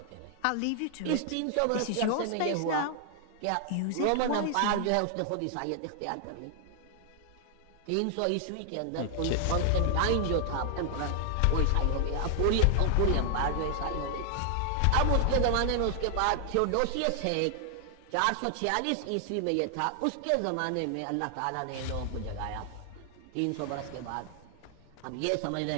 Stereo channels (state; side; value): different; both; correlation 0.00